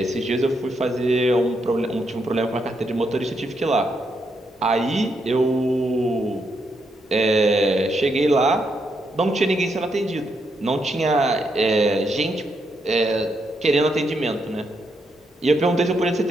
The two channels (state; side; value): normal; both; correlation 0.79